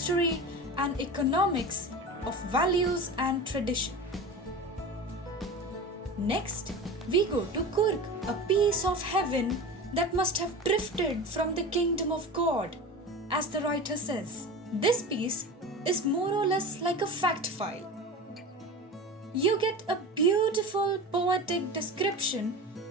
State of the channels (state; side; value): normal; both; correlation 0.31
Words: and economics, of values and tradition. Next, we go to Coorg, a piece of heaven that must have drifted from the kingdom of God, as the writer says. This piece is more or less like a fact file. You get a beautiful poetic description